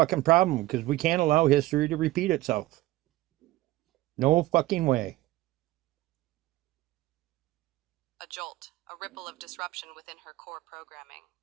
problem, because we can't allow history to repeat itself. No fucking way. A jolt, a ripple of disruption within her core programming.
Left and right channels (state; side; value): quieter; left; 17.4 dB